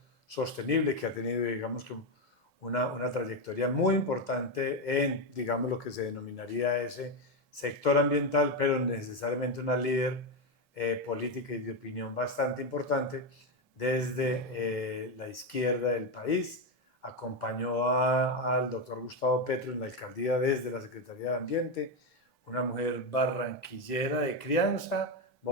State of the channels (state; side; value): normal; both; correlation 0.09